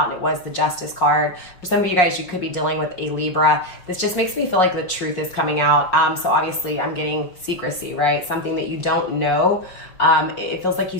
and it was the Justice card. For some of you guys, you could be dealing with a Libra. This just makes me feel like the truth is coming out. So obviously I'm getting secrecy, right? Something that you don't know. It feels like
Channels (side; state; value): right; late; 5.5 ms